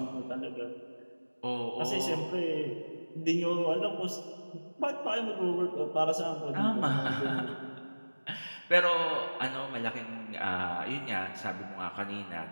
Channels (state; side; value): inverted; both; correlation -1.00